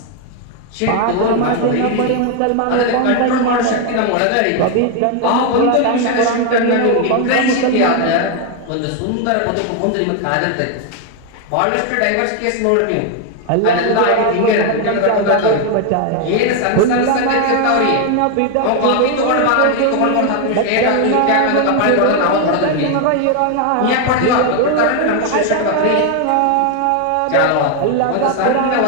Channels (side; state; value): both; different; correlation 0.01